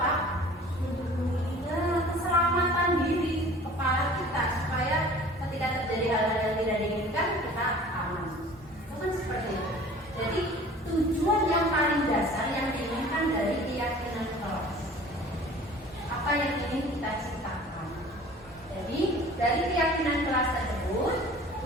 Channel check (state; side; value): normal; both; correlation 0.46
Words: Ya, keselamatan diri kepala kita supaya ketika terjadi hal-hal yang tidak diinginkan kita aman. Itu kan seperti itu. Jadi tujuan yang paling dasar yang diinginkan dari keyakinan kelas, apa yang ingin kita ciptakan. Jadi dari keyakinan kelas tersebut